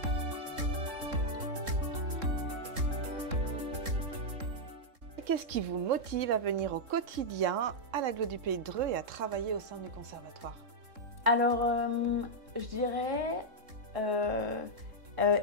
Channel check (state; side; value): late; left; 3.7 ms